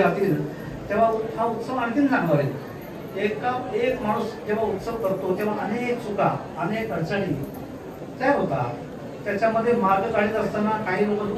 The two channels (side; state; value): both; identical; correlation 1.00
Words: तेव्हा हा उत्सव आणखीन चांगला होईल. एक माणूस जेव्हा उत्सव करतो तेव्हा अनेक चुका, अनेक अडचणी तयार होतात, त्याच्यामध्ये मार्ग काढत असताना काही लोक